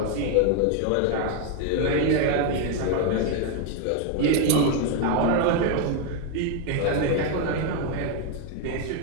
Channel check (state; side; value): different; both; correlation 0.01